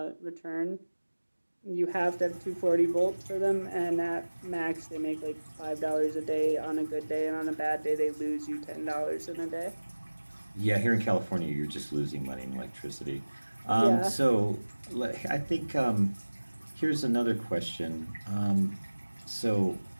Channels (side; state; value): both; inverted; correlation -1.00